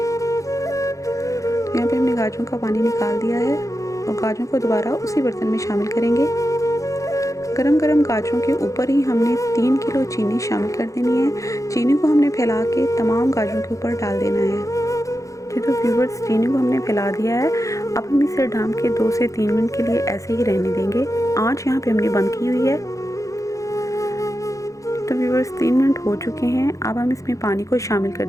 यहाँ पे हमने गाजरों का पानी निकाल दिया है और गाजरों को दोबारा उसी बर्तन में शामिल करेंगे। गरम गरम गाजरों के ऊपर ही हमने 3 किलो चीनी शामिल कर देनी है। चीनी को हमने फैला के तमाम गाजरों के ऊपर डाल देना है। तो व्यूअर्स, चीनी को हमने फैला दिया है। अब हम इसे ढक के 2 से 3 मिनट के लिए ऐसे ही रहने देंगे। आँच यहाँ पे हमने बंद की हुई है। तो व्यूअर्स, 3 मिनट हो चुके हैं। अब हम इसमें पानी को शामिल कर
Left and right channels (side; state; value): right; late; 0.16 ms